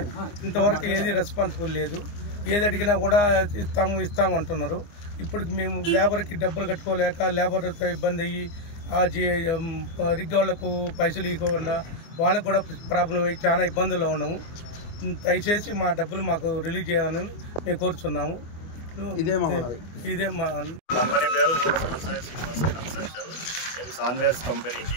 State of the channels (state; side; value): late; right; 24 ms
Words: ఇంతవరకు ఏది రెస్పాన్సిబుల్ లేదు. ఏది అడిగినా కూడా ఇస్తాము అంటున్నారు. ఇప్పటికి మేము లేబర్కి డబ్బులు కట్టుకోలేక లేబర్తో ఇబ్బంది అయ్యి ఆ రిగ్గి వాళ్లకు పైసలు ఇవ్వకుండా వాళ్ళకు కూడా ప్రాబ్లం అయ్యి చాలా ఇబ్బందుల్లో ఉన్నాము. దయచేసి మా డబ్బులు మాకు రిలీజ్ చేయాలని మేము కోరుచున్నాము. ఇదే మా కంపెనీ పేరు శ్రీనివాస కన్స్ట్రక్షన్. మేము సాన్వేర్స్